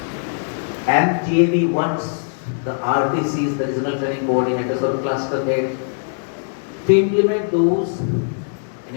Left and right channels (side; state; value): right; silent; digital silence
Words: GAV wants the RTCs, the Regional Training Coordinators or Cluster Head, to implement those in